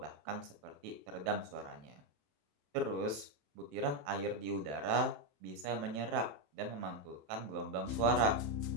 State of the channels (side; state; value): left; late; 27 ms